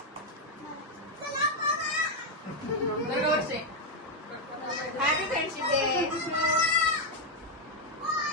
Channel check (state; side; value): normal; both; correlation 0.02